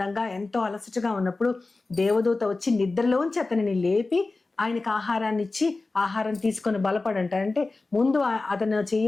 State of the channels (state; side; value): quieter; right; 3.5 dB